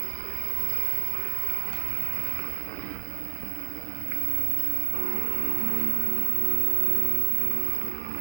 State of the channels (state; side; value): silent; left; 59 dB below the other